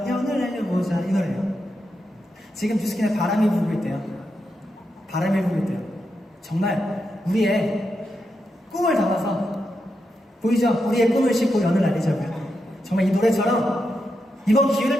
연을 날려보자 이 노래예요. 지금 뉴스킨에 바람이 불고 있대요. 바람이 불고 있대요. 정말 우리의 꿈을 담아서 보이죠? 우리의 꿈을 싣고 연을 날리자고요. 정말 이 노래처럼 이번 기회를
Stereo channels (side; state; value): both; normal; correlation 0.85